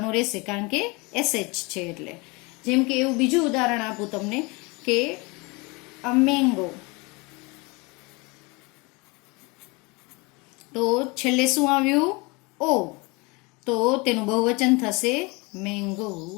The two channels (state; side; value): quieter; right; 26.9 dB